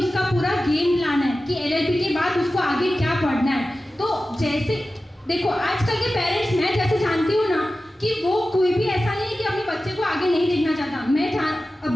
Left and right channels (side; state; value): both; normal; correlation 0.94